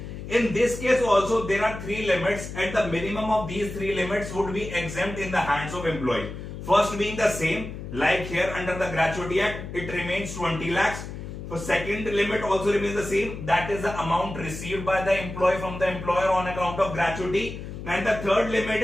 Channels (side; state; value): left; noise; hum, 9 dB below the sound